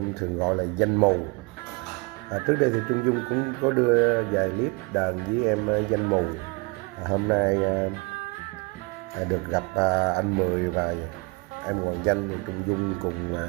thường gọi là Danh Mù. Trước đây thì Trung Dung cũng có đưa vài clip đàn với em Danh Mù. Hôm nay được gặp anh Mười và em Hoàng Danh, Trung Dung cùng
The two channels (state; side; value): quieter; left; 29.4 dB